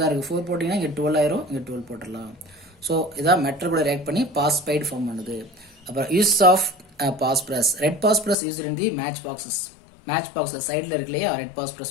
இருக்குது. 4 போட்டிங்கன்னா இங்கே 12 ஆயிரும். இங்கே 12 போட்டுடலாம். ஸோ இதான் மெட்டல் கூட ரியாக்ட் பண்ணி பாஸ்பைடு ஃபார்ம் பண்ணுது. அப்புறம் use of phosphorus. Red phosphorus use in the match boxes. Match பாக்ஸில் சைடில் இருக்கு இல்லையா, ரெட்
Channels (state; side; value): drops out; right; at 8.3 s